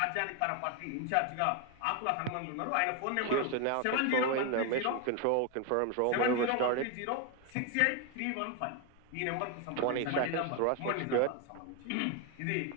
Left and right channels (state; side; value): different; both; correlation 0.01